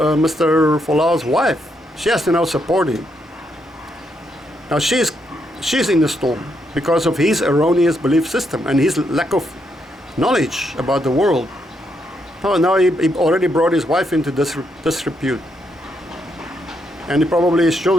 Mr. Folau's wife, she has to now support him. Now she's in the storm because of his erroneous belief system and his lack of knowledge about the world. Now he already brought his wife into disrepute. And probably his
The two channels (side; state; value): both; normal; correlation 0.78